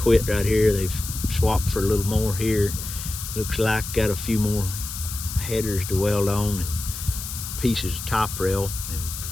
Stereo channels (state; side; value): noise; left; hiss, 8 dB below the sound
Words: right here. They've swapped for a little more here. Looks like got a few more headers to weld on and pieces of top rail, and